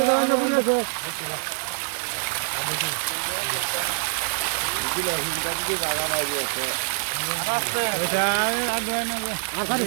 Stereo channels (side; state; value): left; silent; 61 dB below the other